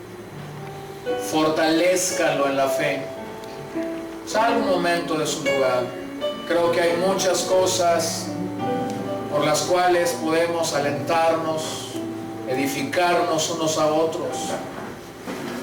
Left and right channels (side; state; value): both; identical; correlation 1.00